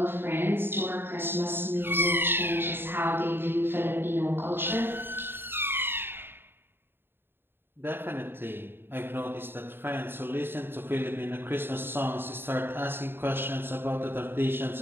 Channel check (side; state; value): left; late; 0.10 ms